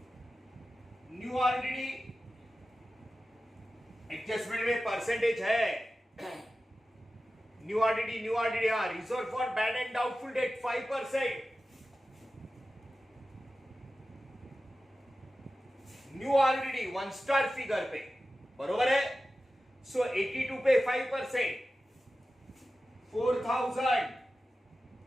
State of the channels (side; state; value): both; normal; correlation 0.94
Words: न्यू आरडीडी एडजस्टमेंट में परसेंटेज है। न्यू आरडीडी हाँ, reserve for bad and doubtful debt 5%। New RDD 1 star figure पे, बरोबर है। सो 82 पे 5%, 4100,